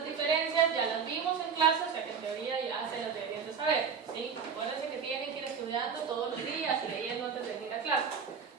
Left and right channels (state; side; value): quieter; left; 6.3 dB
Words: diferencias, ya las vimos en clase, o sea que en teoría ya se las deberían de saber, ¿sí? Acuérdense que tienen que ir estudiando todos los días y leyendo antes de ir a clase.